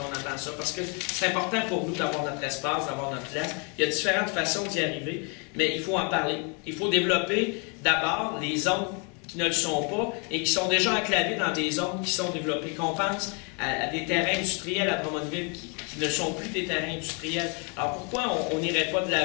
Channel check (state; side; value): quieter; right; 35.5 dB